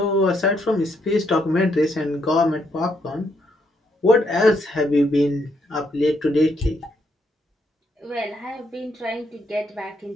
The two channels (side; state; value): both; normal; correlation 0.75